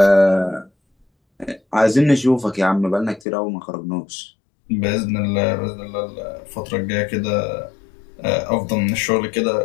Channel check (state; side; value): drops out; right; at 3.2 s